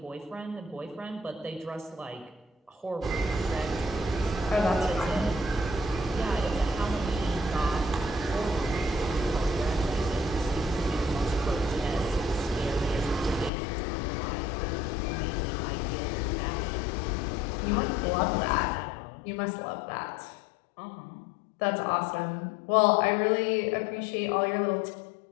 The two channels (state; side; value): drops out; right; at 13.5 s